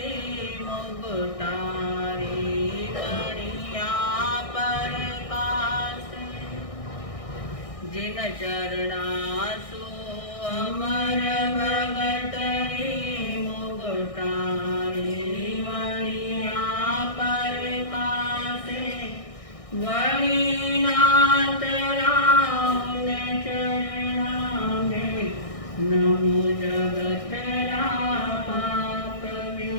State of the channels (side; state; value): right; late; 1.6 ms